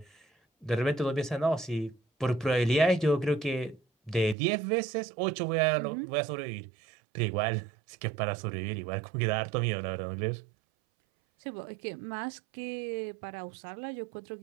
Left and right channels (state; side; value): drops out; left; at 4.4 s